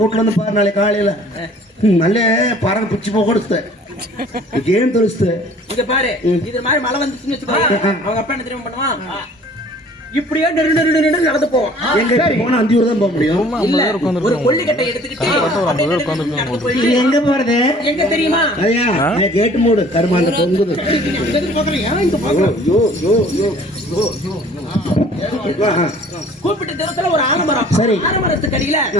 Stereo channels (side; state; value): both; normal; correlation 0.52